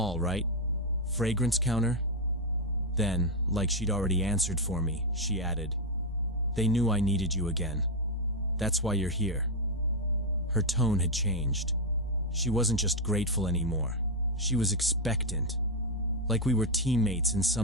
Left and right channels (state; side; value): normal; both; correlation 0.02